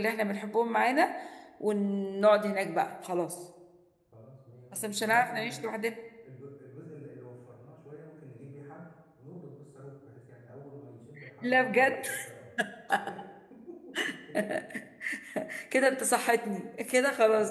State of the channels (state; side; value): identical; both; correlation 1.00